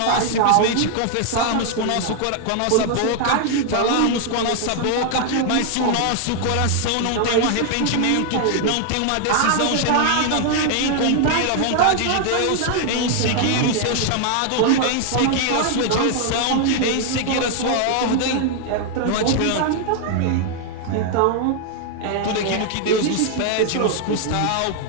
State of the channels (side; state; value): both; different; correlation 0.00